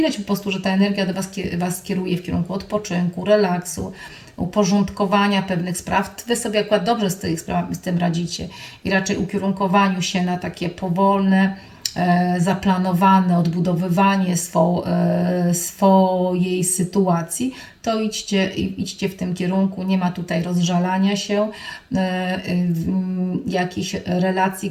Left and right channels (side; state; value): both; identical; correlation 1.00